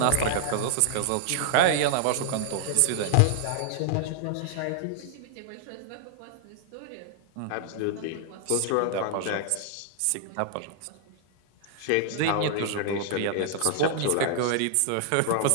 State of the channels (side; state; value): both; different; correlation -0.01